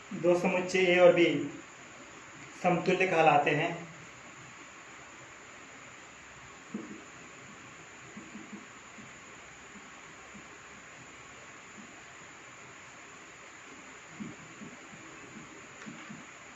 दो समुच्चय ए और बी समतुल्य कहलाते हैं।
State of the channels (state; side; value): identical; both; correlation 1.00